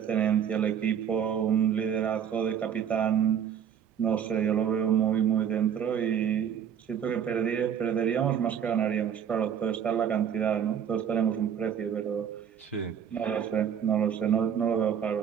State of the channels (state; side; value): quieter; left; 8.5 dB